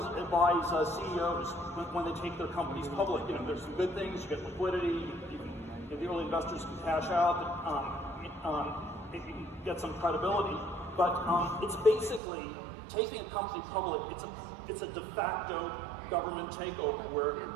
advise CEOs when they take their companies public. There's some good things. You get liquidity. The early investors can cash out. You can get some credibility. But it's basically taking a company public. It's a de facto government takeover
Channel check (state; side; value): drops out; left; at 12.2 s